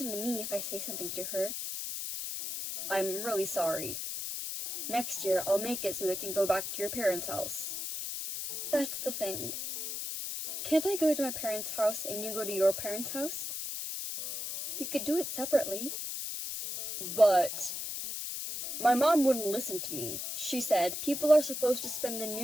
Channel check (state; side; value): noise; left; hiss, 4 dB below the sound